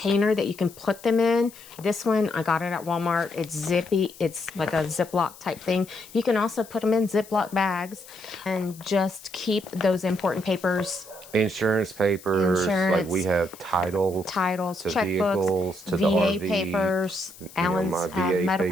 that you can put them in. This one, I got it at Walmart. It's zippy. It's like a Ziploc type thing. You can also put them in Ziploc bags and just keep those important papers Insurance papers, like we Insurance, have titles titles, to checkbooks, vehicles, to the VA RV, papers, Alan's my VA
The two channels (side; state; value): left; noise; hiss, 20 dB below the sound